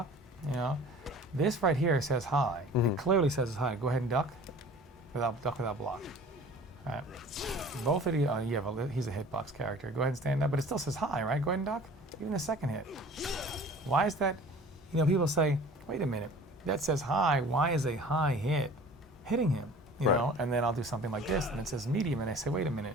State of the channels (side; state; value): both; normal; correlation 0.45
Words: This right here says high. It clearly says it's high. Go ahead and duck without block. All right. Both of you, he's a hitbox character. Go ahead and stand up, but it still says high, right? Go ahead and duck. Even the second hit. Why is that? People say, wait a minute, that says high. Why is a high hit hitting him? Right. And then I'll do something like this, and it says medium, and I say, wait a minute.